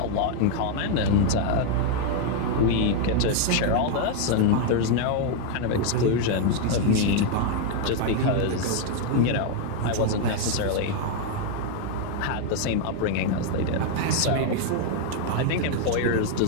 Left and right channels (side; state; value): both; different; correlation 0.00